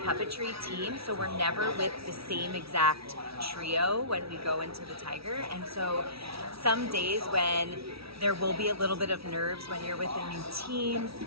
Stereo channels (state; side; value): late; left; 0.76 ms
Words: team, so we're never with the same exact trio when we go into the Tiger. And so some days when there will be a little bit of nerves when you're with a new team,